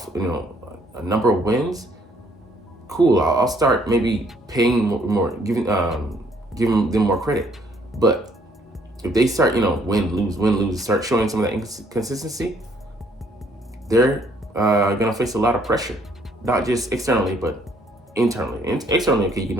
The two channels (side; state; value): both; normal; correlation 0.65